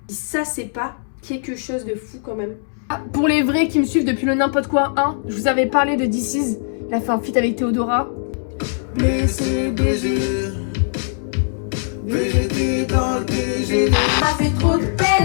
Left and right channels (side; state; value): right; silent; digital silence